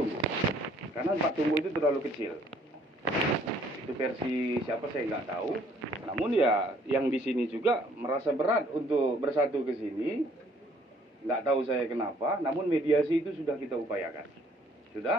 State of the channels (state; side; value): normal; both; correlation 0.62